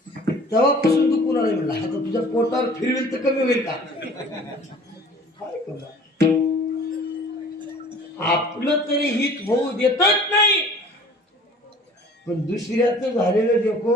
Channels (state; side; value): normal; both; correlation 0.48